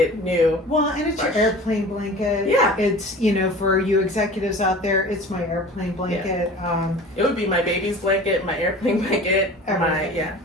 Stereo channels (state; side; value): normal; both; correlation 0.40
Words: new. Well, and it's your airplane blanket. Yeah. It's, for you executives out there, it's my airplane blanket. It would be my baby's blanket, my airplane blanket, Everything.